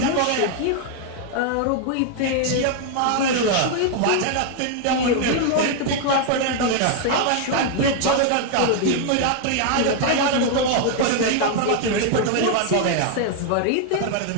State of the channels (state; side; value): different; both; correlation 0.00